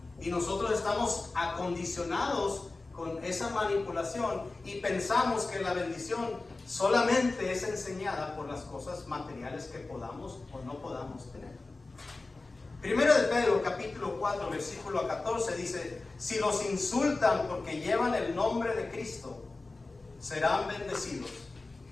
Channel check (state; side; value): quieter; right; 3.4 dB